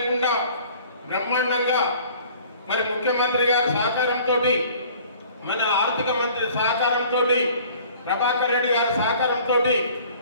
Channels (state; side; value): inverted; both; correlation -0.50